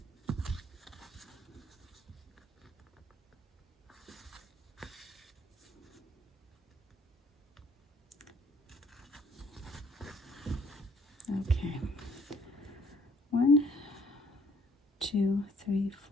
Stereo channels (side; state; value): both; normal; correlation 0.61